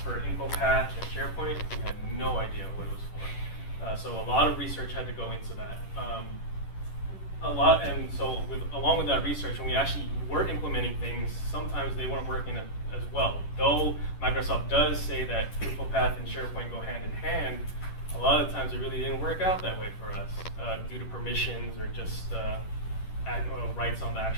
for Infopath and Sharepoint, we had no idea what it was for. So a lot of research had to go into that. Along with that research, when we actually were implementing things, sometimes they weren't working as well. Though Microsoft does say that Infopath and SharePoint go hand in hand, a lot of times it really didn't work out that way for us due to permissions or just rights on the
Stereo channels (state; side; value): late; right; 10 ms